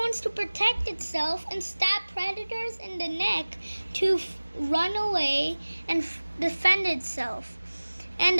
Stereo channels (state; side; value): inverted; both; correlation -1.00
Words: to protect itself and stab predators in the neck to run away and defend itself.